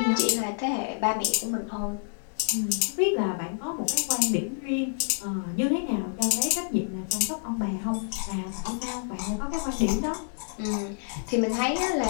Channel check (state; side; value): silent; right; 59 dB below the other